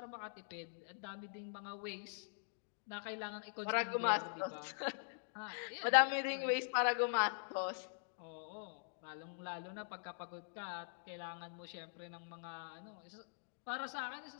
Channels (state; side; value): silent; right; digital silence